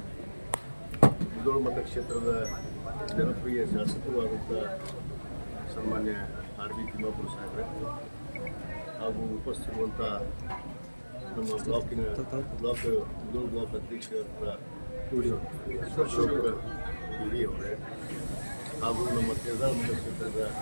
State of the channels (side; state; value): both; inverted; correlation -1.00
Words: ಮುಧೋಳ ಮತಕ್ಷೇತ್ರದ ಜನಪ್ರಿಯ ಶಾಸಕರು ಆದಂಥ ಸನ್ಮಾನ್ಯ ಆರ್ ಬಿ ತಿಮ್ಮಾಪುರ ಸಾಹೇಬ್ರೆ ಹಾಗೂ ಉಪಸ್ಥಿತಿರುವಂಥ ನಮ್ಮ ಮುಧೋಳ ಬ್ಲಾಕ್ ಅಧ್ಯಕ್ಷರಾದ ಅಶೋಕ್ ಹಿರಿಯವರೇ ಹಾಗೂ ನಮ್ಮ ಕೇದಾರ ಮತಕ್ಷೇತ್ರದ